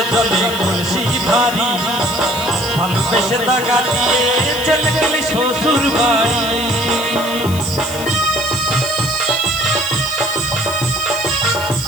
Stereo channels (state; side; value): noise; left; hiss, 12 dB below the sound